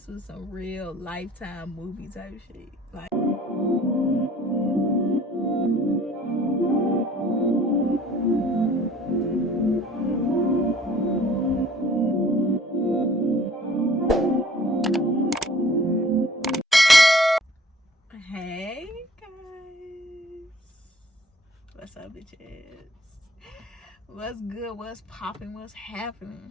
was some real Lifetime movie type shit. Like, hey guys, what's up, bitches? What's good? What's popping? What's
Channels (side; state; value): both; normal; correlation 0.53